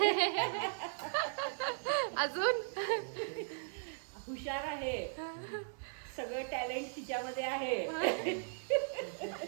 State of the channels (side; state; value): left; silent; digital silence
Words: अजून हुशार आहे. सगळं टॅलेंट तिच्यामध्ये आहे.